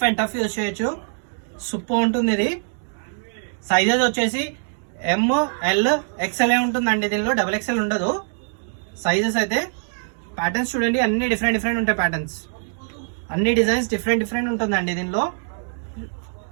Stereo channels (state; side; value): silent; left; 63 dB below the other